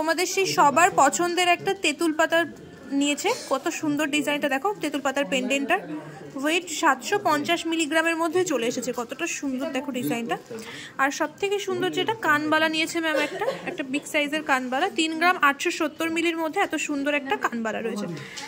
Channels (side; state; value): both; identical; correlation 1.00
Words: সেই সবার পছন্দের একটা তেঁতুল পাতার নিয়েছে। কত সুন্দর ডিজাইনটা দেখো, তেঁতুল পাতার পেন্ডেন্টটার ওয়েট 750 মিলিগ্রামের মধ্যে চলে এসেছে। কতটা সুন্দর দেখো ডিজাইনটা। আর সব থেকে সুন্দর যেটা কানবালা নিয়েছে ম্যাম, একটা বিগ সাইজের কানবালা, 3 গ্রাম 870 মিলির মধ্যে এত সুন্দর একটা কানবালা রয়েছে।